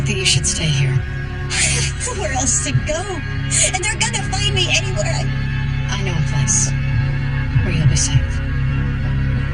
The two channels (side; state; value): both; identical; correlation 1.00